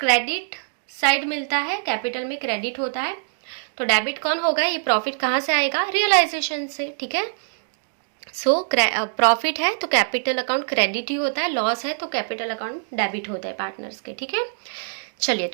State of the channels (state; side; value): silent; left; digital silence